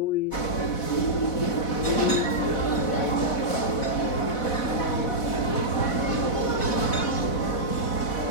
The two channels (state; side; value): late; right; 4.1 ms